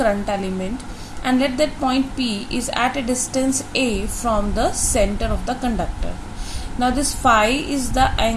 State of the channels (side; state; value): both; identical; correlation 1.00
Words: element, and let that point P is at a distance a from the center of the conductor. Now this phi is the